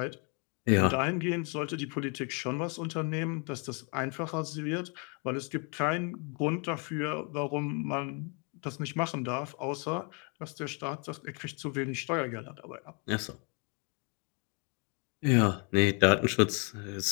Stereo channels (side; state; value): right; quieter; 35.4 dB